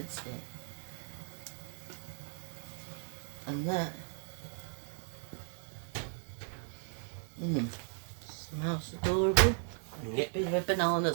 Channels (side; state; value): left; silent; 53 dB below the other